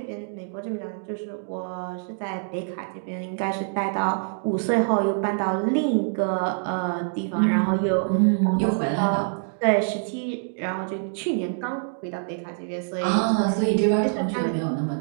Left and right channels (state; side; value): silent; left; digital silence